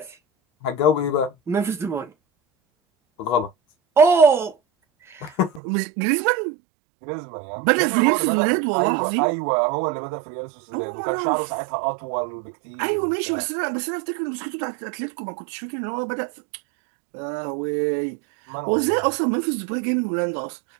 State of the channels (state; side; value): drops out; left; at 5.6 s